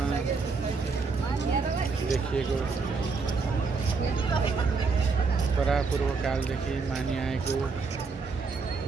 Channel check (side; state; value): left; quieter; 4.6 dB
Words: देखिएको परापूर्वकालदेखि मानिआएको